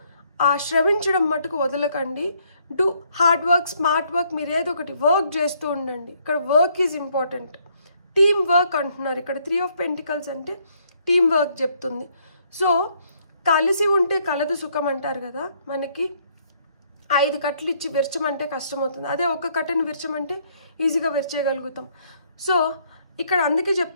ఆ శ్రమించడం మటుకు వదలకండి. Do hard work, smart work, మీరు ఏదో ఒకటి వర్క్ చేస్తూ ఉండండి. ఇక్కడ work is important. Team work అంటున్నారు ఇక్కడ. 3 of Pentacles అంటే టీమ్ వర్క్ చెప్తుంది. సో కలిసి ఉంటే కలదు సుఖం అంటారు కదా, మనకి 5 కట్టలు ఇచ్చి విరచమంటే కష్టమవుతుంది, అదే ఒక కట్టని విరచమంటే ఈజీగా విరచేయగలుగుతాం. సో ఇక్కడ అందుకే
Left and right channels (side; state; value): both; inverted; correlation -0.68